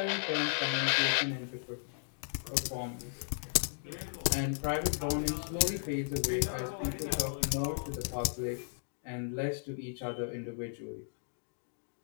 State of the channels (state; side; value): silent; right; digital silence